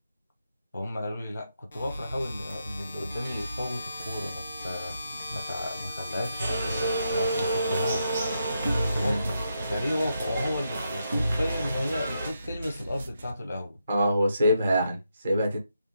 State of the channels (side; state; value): both; inverted; correlation -0.82